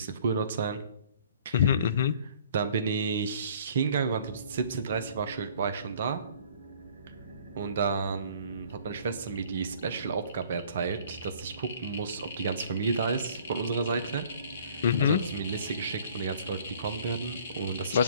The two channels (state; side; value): inverted; both; correlation -0.53